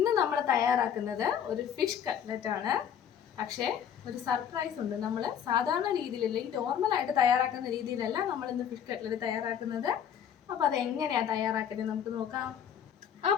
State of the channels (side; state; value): right; quieter; 8.8 dB